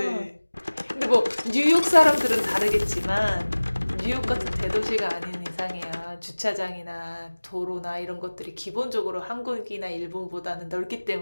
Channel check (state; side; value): inverted; both; correlation -1.00